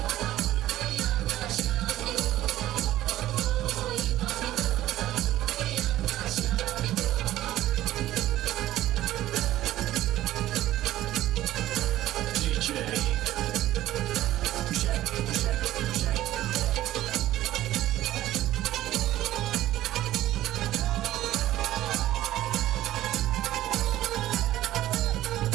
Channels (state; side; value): quieter; left; 14.4 dB